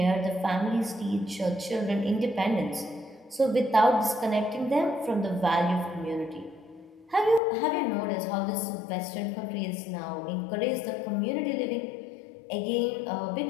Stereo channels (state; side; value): drops out; right; at 7.4 s